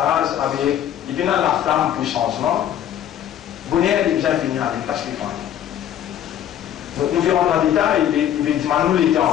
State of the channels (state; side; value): quieter; right; 10.6 dB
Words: avec, il vient la flamme pour changement. Vous n'avez pas besoin de finir avec parce qu'il faut. Nous verrons dans le détail, il va dire nous les